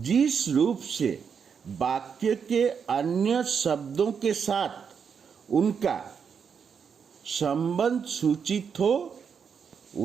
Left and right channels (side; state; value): left; quieter; 6.6 dB